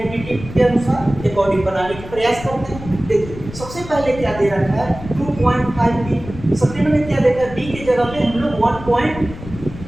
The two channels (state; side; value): noise; left; rumble, 13 dB below the sound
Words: के अनुसार अकॉर्डिंग बनाने का प्रयास करते हैं। देखिए सबसे पहले क्या दे रखा है 2.5 p, सेकंड में क्या देखा है b की जगह पे हम लोग 1.5